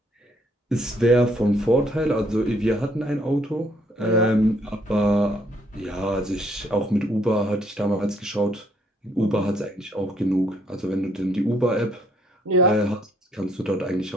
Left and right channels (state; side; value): normal; both; correlation 0.67